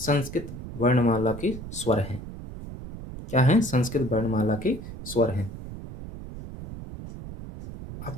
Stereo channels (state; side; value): noise; right; rumble, 11 dB below the sound